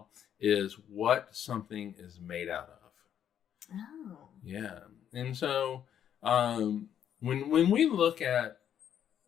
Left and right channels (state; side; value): quieter; right; 9.5 dB